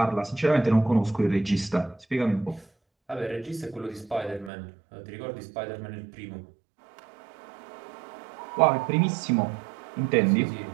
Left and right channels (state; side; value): drops out; left; at 4.5 s